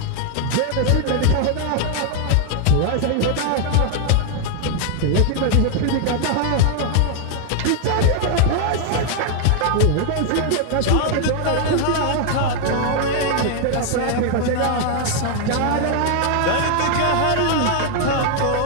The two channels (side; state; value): both; different; correlation 0.00